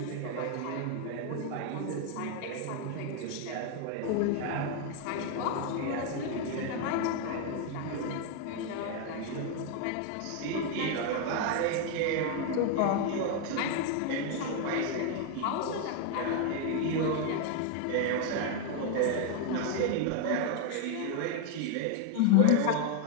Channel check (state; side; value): different; both; correlation 0.00